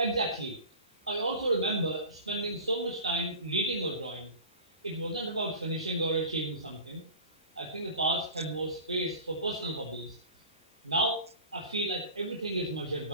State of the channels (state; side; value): inverted; both; correlation -0.38